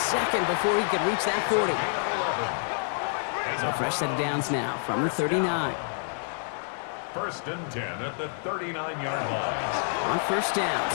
before he could reach that 40. So fresh set of downs now from the 39. 1st and 10 at the 39-yard line. On 1st down,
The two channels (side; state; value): right; silent; 59 dB below the other